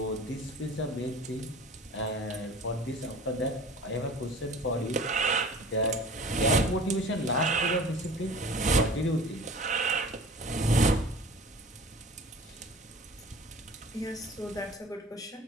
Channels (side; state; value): both; normal; correlation 0.42